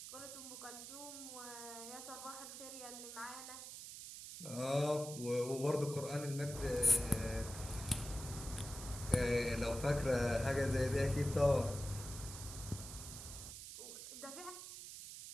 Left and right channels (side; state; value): right; noise; hiss, 10 dB below the sound